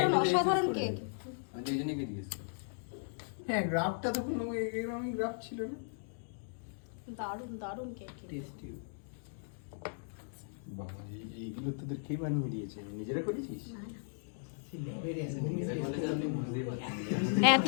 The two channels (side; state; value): right; silent; digital silence